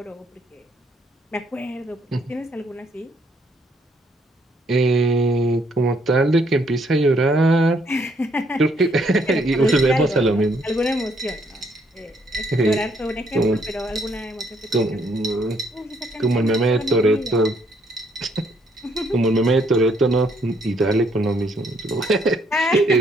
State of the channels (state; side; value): normal; both; correlation 0.69